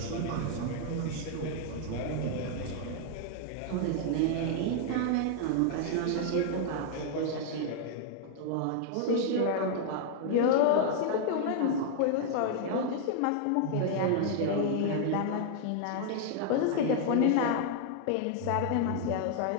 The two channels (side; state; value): both; different; correlation 0.00